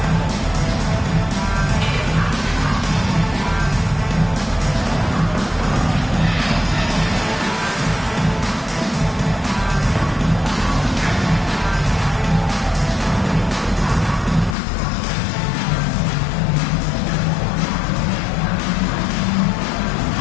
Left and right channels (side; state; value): right; drops out; at 14.6 s